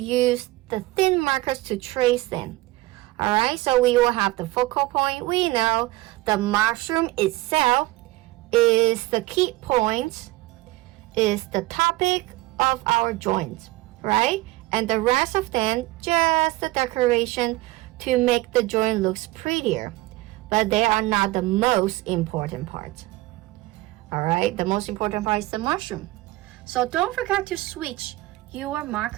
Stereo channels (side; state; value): left; quieter; 19.4 dB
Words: the thin markers to trace them. All right, so we will have the focal point. We know the mushroom itself is the key point, is the topic of our joint, right? And the rest of them, just the decoration to make the joint looks prettier. But they are not the most important part. All right, the most important part is the mushroom. So don't forget to switch your